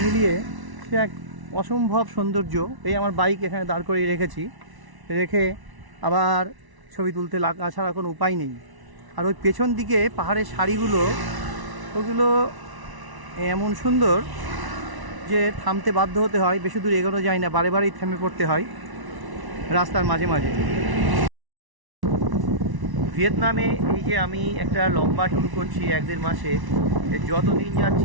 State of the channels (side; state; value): left; late; 1.1 ms